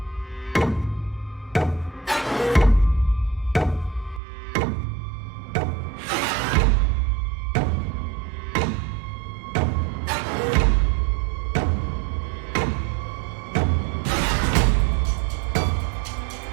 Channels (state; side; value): drops out; left; at 4.2 s